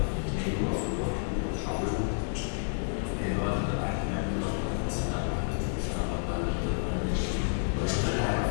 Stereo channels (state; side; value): silent; right; digital silence